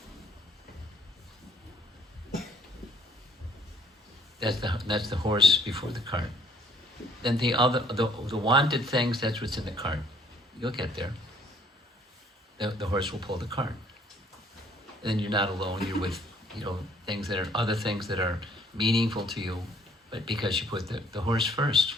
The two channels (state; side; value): normal; both; correlation 0.60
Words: That's the horse before the cart. Then the wanted things, that's what's in the cart. You'll get there. The horse will pull the cart. And then you're not alone. You're with other things that are meaningful to you, but because you put the horse first